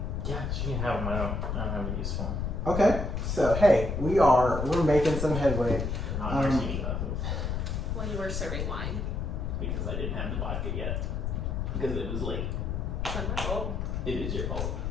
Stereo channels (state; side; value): noise; left; rumble, 1 dB below the sound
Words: Yeah, she can have them. I don't have a use for them. Okay, so hey, we're making some headway. They're not martini glasses Well, you were serving wine. because I didn't have the vodka yet because it was late. It's not my fault. It is your fault.